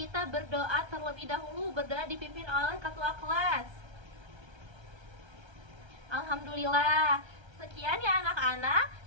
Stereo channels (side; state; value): left; late; 1.3 ms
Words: berdoa terlebih dahulu. Berdoa dipimpin oleh ketua kelas. Alhamdulillah, Sekian ya anak-anak,